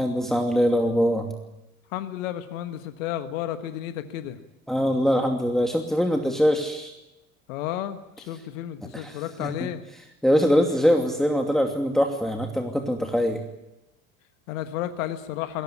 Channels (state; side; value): normal; both; correlation 0.82